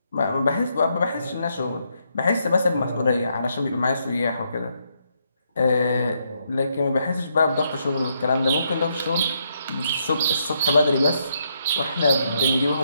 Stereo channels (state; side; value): inverted; both; correlation -0.77